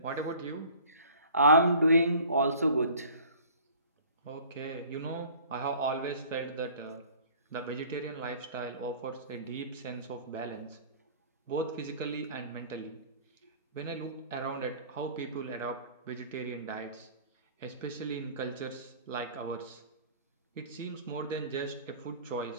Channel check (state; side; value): inverted; both; correlation -0.48